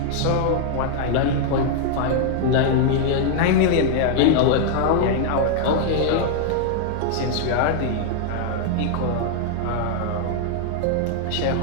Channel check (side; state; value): both; different; correlation 0.00